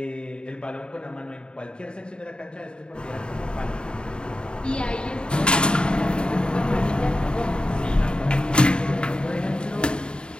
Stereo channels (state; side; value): late; right; 0.051 ms